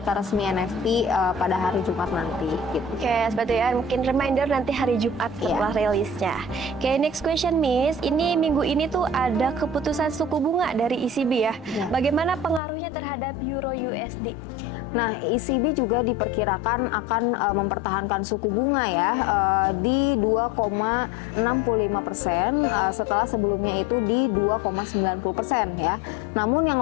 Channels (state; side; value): drops out; right; at 12.6 s